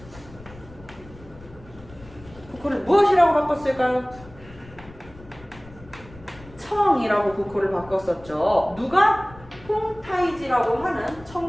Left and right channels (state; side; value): noise; left; rumble, 20 dB below the sound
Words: 국호를 무엇이라고 바꿨을까요? 청이라고 국호를 바꿨었죠. 누가? 홍타이지라고 하는